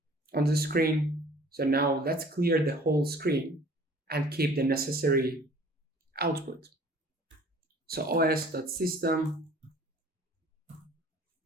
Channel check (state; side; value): normal; both; correlation 0.51